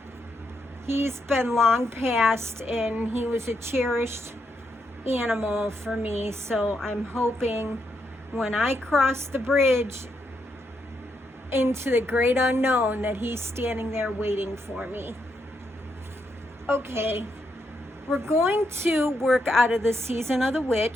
He's been long past, and he was a cherished animal for me, so I'm hoping when I cross the bridge into the great unknown that he's standing there waiting for me. Okay. We're going to work out of the Season of the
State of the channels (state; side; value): normal; both; correlation 0.80